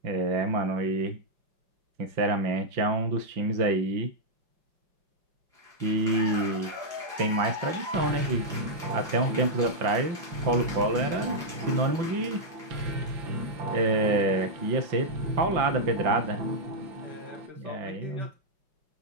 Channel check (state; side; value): late; left; 5.8 ms